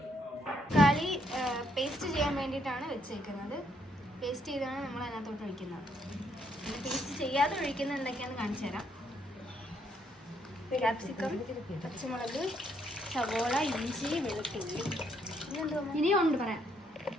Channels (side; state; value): both; normal; correlation 0.72